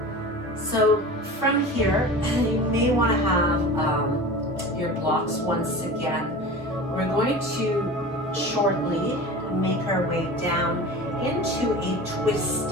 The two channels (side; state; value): both; normal; correlation 0.35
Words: So from here, you may want to have your blocks once again. We're going to shortly make our way down into a